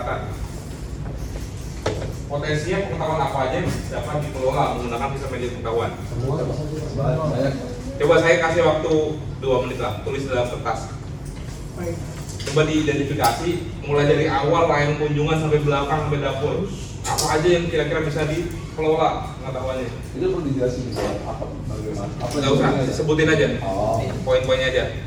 Potensinya pengetahuan apa aja yang dapat dikelola menggunakan sistem manajemen pengetahuan. Semua banyak. Coba saya kasih waktu 2 menit lah, tulis dalam kertas. Coba diidentifikasi mulai dari awal layanan kunjungan sampai belakang sampai dapur. Apa aja yang kira-kira bisa dikelola pengetahuannya? Itu perlu dijelasin gitu, apa bagaimana? Apa Nggak usah, yang- sebutin aja. Oh. Poin-poinnya aja.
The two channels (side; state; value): both; identical; correlation 1.00